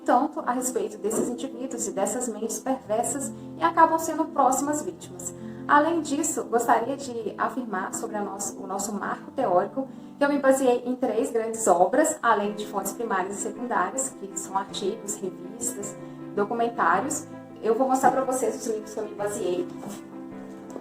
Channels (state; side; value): identical; both; correlation 1.00